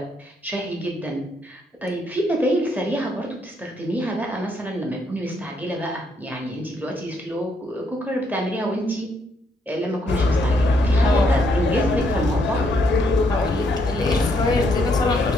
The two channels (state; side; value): normal; both; correlation 0.73